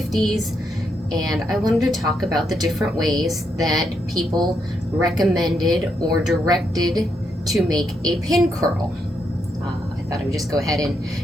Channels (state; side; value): normal; both; correlation 0.79